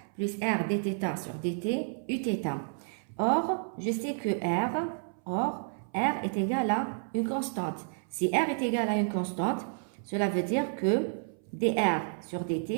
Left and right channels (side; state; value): left; silent; 57 dB below the other